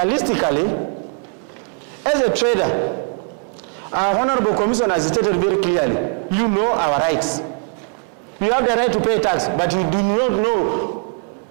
as a trader, our Honorable Commissioner has stated very clearly, you know our rights. You have the right to pay tax, but you do not know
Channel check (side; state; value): left; quieter; 39.6 dB